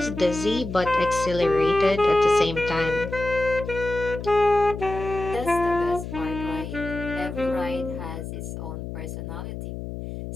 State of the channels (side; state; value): left; noise; hum, 8 dB below the sound